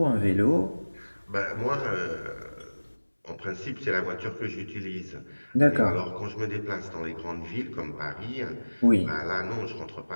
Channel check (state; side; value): inverted; both; correlation -1.00